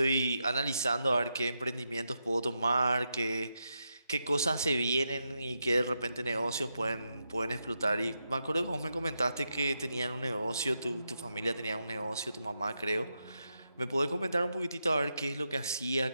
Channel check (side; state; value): both; inverted; correlation -0.85